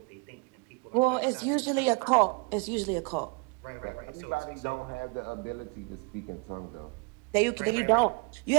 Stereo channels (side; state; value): left; quieter; 32.7 dB